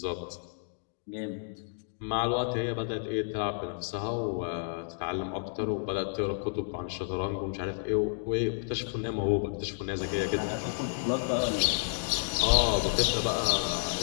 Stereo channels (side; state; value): right; silent; digital silence